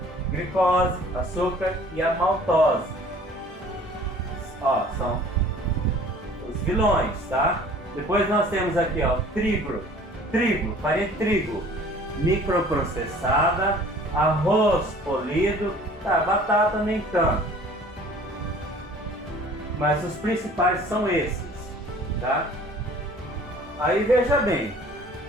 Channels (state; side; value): normal; both; correlation 0.50